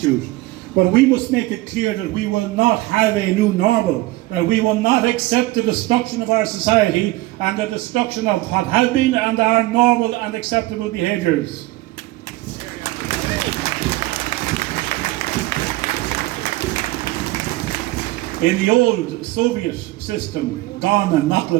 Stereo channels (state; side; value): quieter; left; 19.0 dB